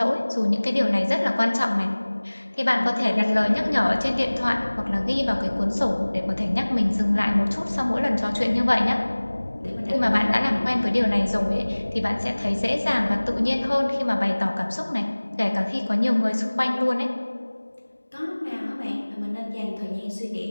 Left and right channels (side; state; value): both; inverted; correlation -1.00